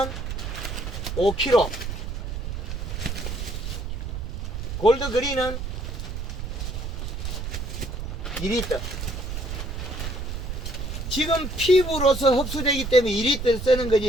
5kg, 골드그린은 2리터. 지금 피부로서 흡수되기 때문에 2리터 쓰는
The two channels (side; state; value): right; noise; rumble, 5 dB below the sound